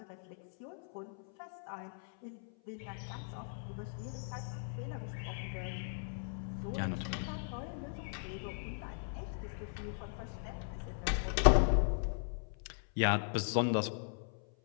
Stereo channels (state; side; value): silent; right; 52 dB below the other